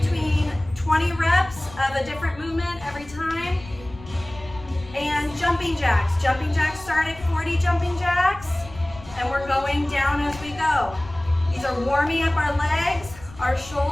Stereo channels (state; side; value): noise; left; rumble, 18 dB below the sound